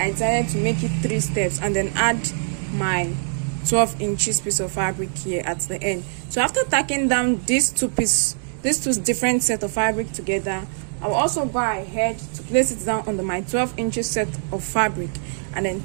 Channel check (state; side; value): silent; left; digital silence